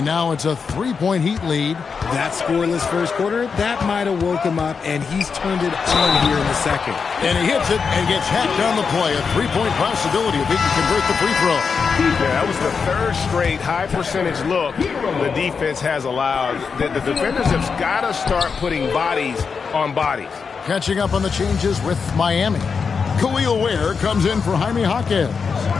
now it's a 3-point Heat lead. That scoreless first quarter, that might have woke him up, and he's turned it on here in the second. And he hits it and gets hacked on the play. A 3-point possibility if he can convert the free throw. Yeah, that was the third straight high-percentage look the defense has allowed. The defenders have got to start putting bodies on bodies. Catching up on the changes with Miami. Khalil Ware comes in for Jaime Jaquez.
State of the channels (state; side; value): quieter; right; 5.6 dB